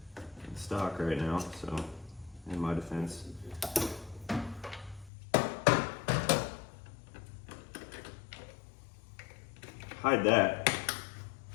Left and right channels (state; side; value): drops out; right; at 5.1 s